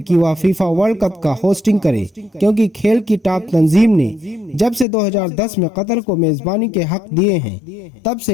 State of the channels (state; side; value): drops out; right; at 4.9 s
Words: وہ فیفا ورلڈ کپ کا ہوسٹنگ کرے، کیونکہ کھیل کی ٹاپ تنظیم نے جب سے 2010 میں قطر کو میزبانی کے حق دیے ہیں، تب